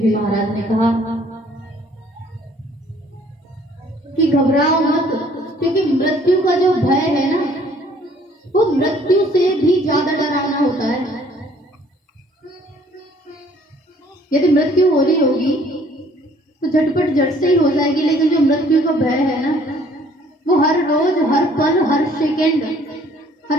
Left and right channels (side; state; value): both; normal; correlation 0.59